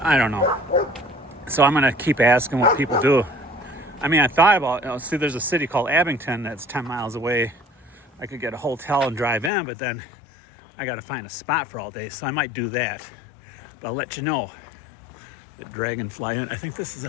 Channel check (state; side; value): drops out; right; at 9.5 s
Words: I don't know. So I'm going to keep asking what people do. I mean, I thought about, see, there's a city called Abington that's 10 miles away. I could get a hotel and drive in, but then I got to find a spot for all day. So I might do that. But I'll let you know. The Dragonfly Inn. I think this is a